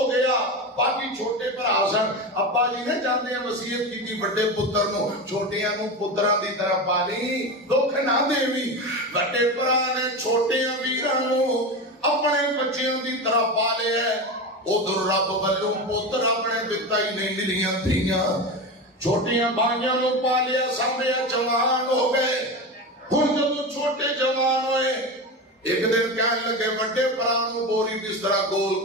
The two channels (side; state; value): both; normal; correlation 0.22